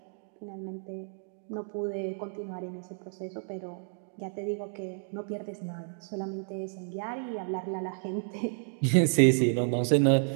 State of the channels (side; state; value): left; silent; digital silence